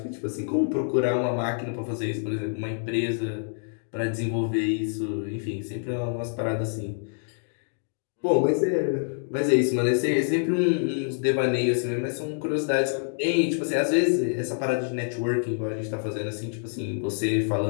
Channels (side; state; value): right; silent; digital silence